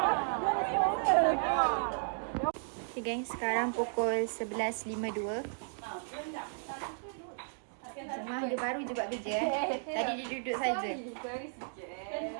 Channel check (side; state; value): left; silent; digital silence